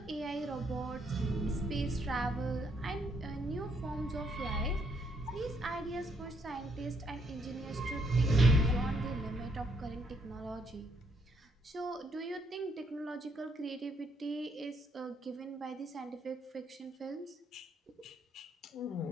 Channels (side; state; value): both; normal; correlation 0.72